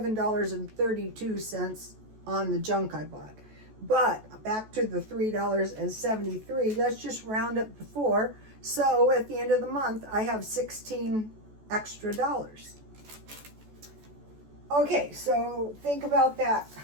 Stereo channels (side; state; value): left; late; 14 ms